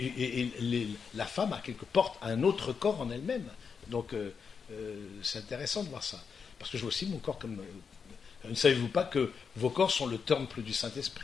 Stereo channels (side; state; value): right; quieter; 6.0 dB